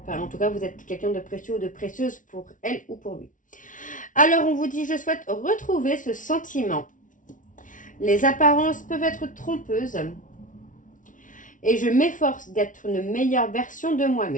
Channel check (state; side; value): late; right; 0.38 ms